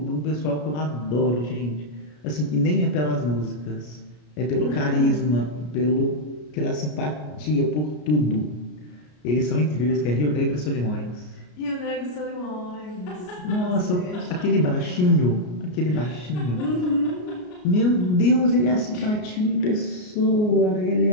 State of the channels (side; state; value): right; late; 33 ms